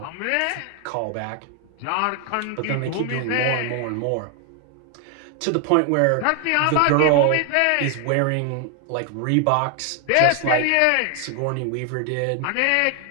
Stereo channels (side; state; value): both; different; correlation 0.00